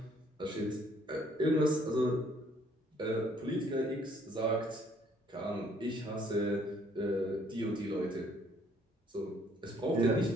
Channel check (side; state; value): both; normal; correlation 0.63